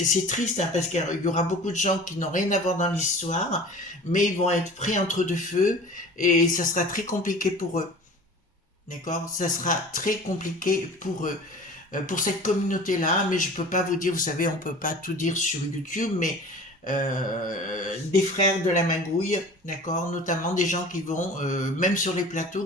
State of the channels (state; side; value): normal; both; correlation 0.41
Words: triste, hein, parce qu'il y aura beaucoup de gens qui n'ont rien à voir dans l'histoire, mais ils vont être pris entre deux feux et ça sera très compliqué pour eux. D'accord, ça sera très compliqué pour eux. pour cette communauté-là, mais je peux pas vous dire, vous savez, on peut pas tout dire sur YouTube, mais des frères de la magouille, d'accord, notamment des gens qui vont, même sur les